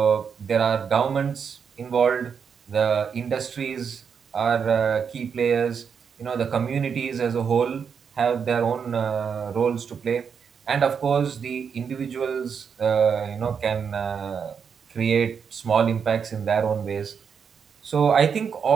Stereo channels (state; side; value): quieter; left; 6.7 dB